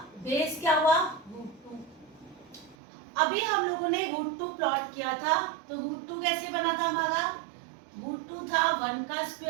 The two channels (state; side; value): drops out; left; at 2.8 s